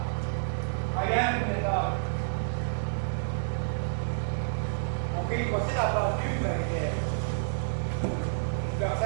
seda plaati ümbergi teeb. Peaks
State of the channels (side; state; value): left; silent; digital silence